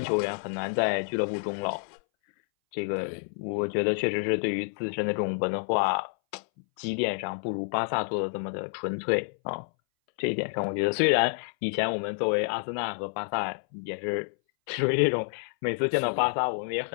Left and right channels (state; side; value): silent; right; 59 dB below the other